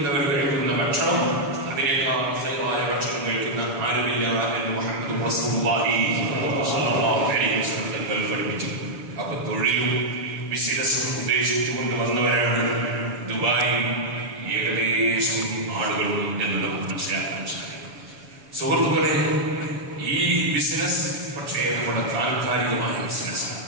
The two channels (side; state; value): left; late; 7.1 ms